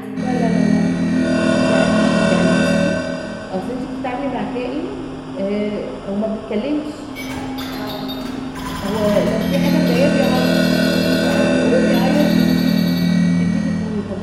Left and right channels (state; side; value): identical; both; correlation 1.00